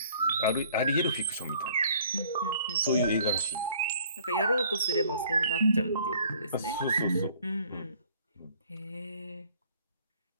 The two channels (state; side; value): inverted; both; correlation -0.57